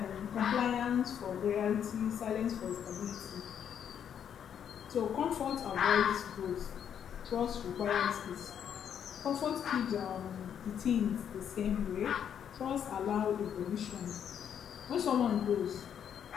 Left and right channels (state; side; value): quieter; right; 8.7 dB